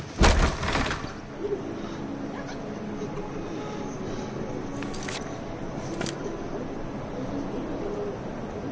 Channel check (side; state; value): both; identical; correlation 1.00